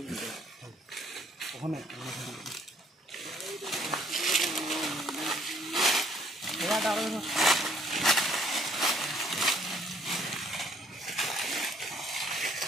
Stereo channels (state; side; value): normal; both; correlation 0.63